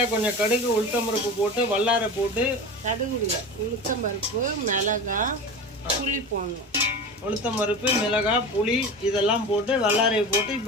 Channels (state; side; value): normal; both; correlation 0.30